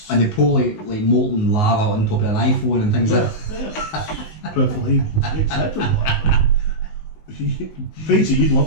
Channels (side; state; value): right; late; 19 ms